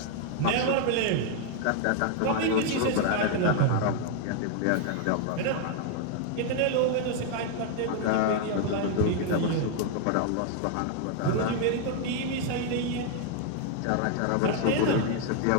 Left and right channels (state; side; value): different; both; correlation 0.00